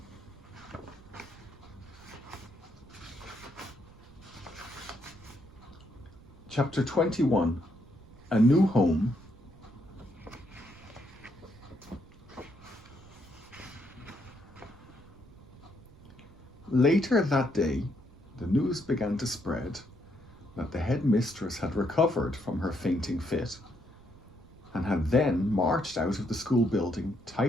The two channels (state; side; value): noise; right; rumble, 22 dB below the sound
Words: Chapter 21, A New Home. Later that day, the news began to spread that the headmistress had recovered from her fainting fit and had then marched out of the school building